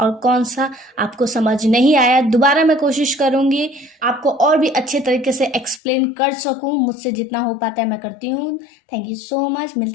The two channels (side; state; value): right; drops out; at 5.8 s